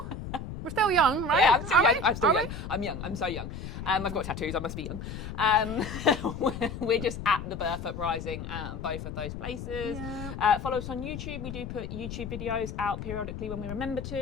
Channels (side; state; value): left; noise; rumble, 8 dB below the sound